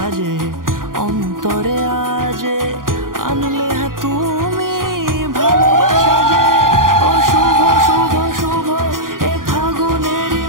অন্তরে আজে আনলে তুমি ভালোবাসা যে। ও শুভ শুভ শুভ এ ফাগুনেরই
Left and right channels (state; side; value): late; left; 0.90 ms